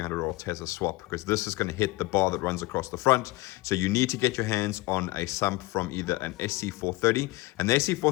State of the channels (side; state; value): right; quieter; 20.3 dB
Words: or Tesla swap, because this is gonna hit the bar that runs across the front. So you need to get your hands on a sump from either an SC430, and the